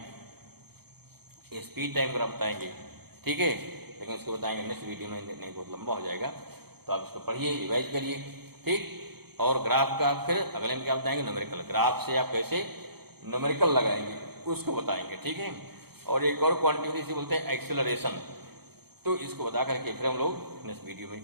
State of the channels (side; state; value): left; late; 0.96 ms